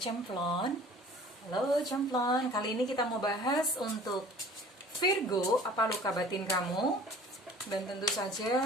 Halo Cemplon, kali ini kita mau bahas untuk Virgo, apa luka batin kamu. Dan tentu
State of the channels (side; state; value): both; normal; correlation 0.47